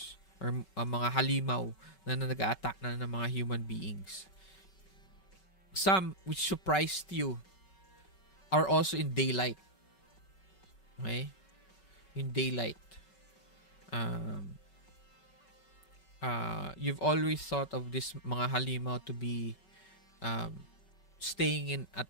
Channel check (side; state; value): right; late; 5.3 ms